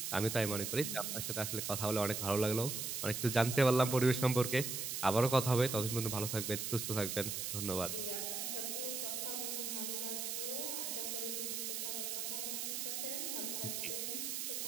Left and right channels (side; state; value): right; noise; hiss, 2 dB below the sound